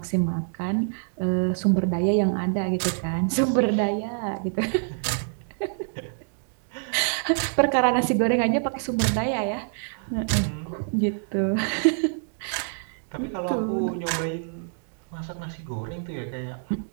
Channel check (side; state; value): left; silent; digital silence